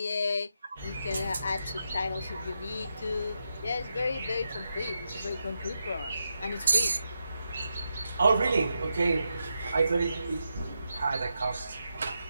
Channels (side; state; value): both; inverted; correlation -0.86